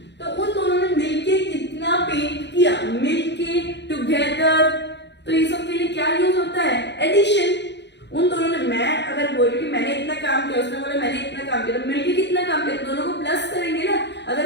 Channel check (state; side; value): late; right; 0.51 ms